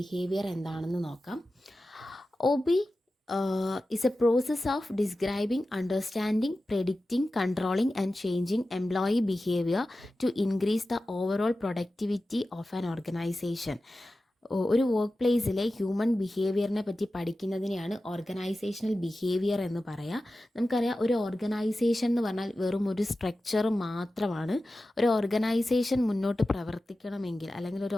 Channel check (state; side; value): normal; both; correlation 0.94